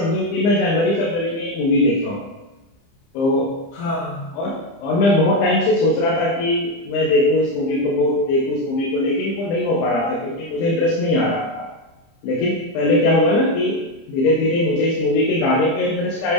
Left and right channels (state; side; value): late; right; 30 ms